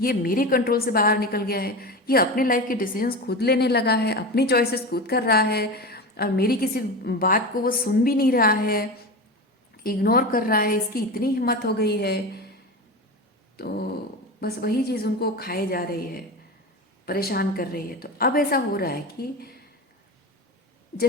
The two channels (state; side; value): normal; both; correlation 0.25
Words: ये मेरे कंट्रोल से बाहर निकल गया है, ये अपने लाइफ के डिसीजंस खुद लेने लगा है, अपनी चॉइसेस खुद कर रहा है, और मेरी किसी बात को वो सुन भी नहीं रहा है। इग्नोर कर रहा है, इसकी इतनी हिम्मत हो गई है, तो बस वही चीज़ उनको खाए जा रही है, परेशान कर रही है। तो अब ऐसा हो रहा है कि